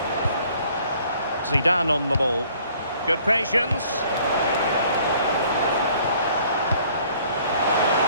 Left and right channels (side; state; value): both; inverted; correlation -0.58